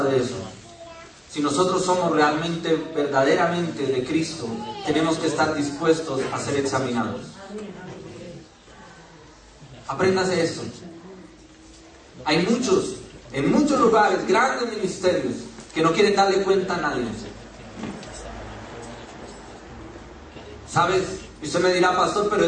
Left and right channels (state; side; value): identical; both; correlation 1.00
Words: de eso. Si nosotros somos realmente, verdaderamente de Cristo, tenemos que estar dispuestos a ser examinados. Apréndase esto. Hay muchos, en muchos lugares, grandes ministerios, que no quieren darle cuenta a nadie. ¿Sabes? Y usted me dirá, pastor, pero